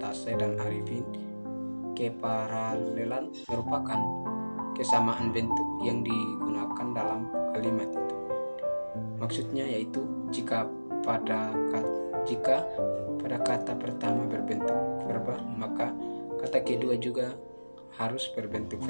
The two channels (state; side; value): inverted; both; correlation -1.00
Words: dan Arifin, keparalelan merupakan kesamaan bentuk yang digunakan dalam kalimat itu. Maksudnya yaitu jika pada kata pertama berbentuk verba, maka kata kedua juga harus berbentuk